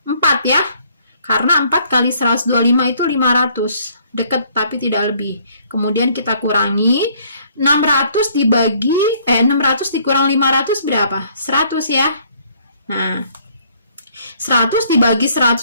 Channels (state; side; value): inverted; both; correlation -0.63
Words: 4 ya. Karena 4 kali 125 itu 500. Deket tapi tidak lebih. Kemudian kita kurangi 600 dikurang 500 berapa? 100 ya. Nah, 100 dibagi